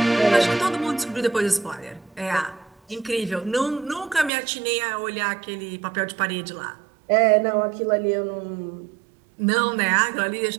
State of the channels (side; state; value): left; drops out; at 4.3 s